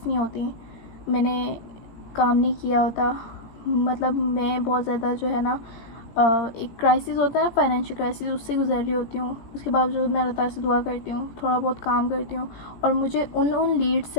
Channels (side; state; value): right; late; 18 ms